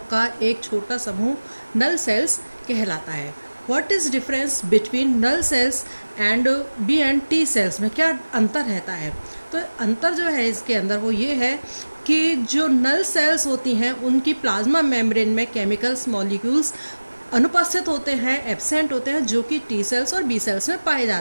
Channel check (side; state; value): both; inverted; correlation -1.00